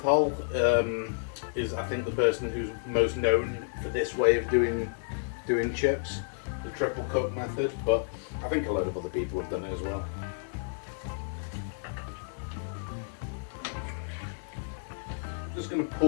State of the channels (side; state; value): right; silent; digital silence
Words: is, I think, the person who's most known for this way of doing chips. the triple cook method, but I think a load of other people have done it as well. Just going to